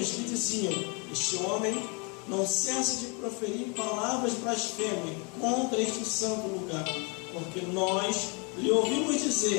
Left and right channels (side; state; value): right; quieter; 32.9 dB